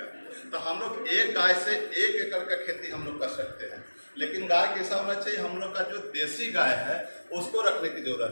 तो हम लोग एक गाय से 1 एकड़ का खेती हम लोग कर सकते हैं, लेकिन गाय कैसा होना चाहिए, हम लोग का जो देसी गाय है उसको रखने की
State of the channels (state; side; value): inverted; both; correlation -1.00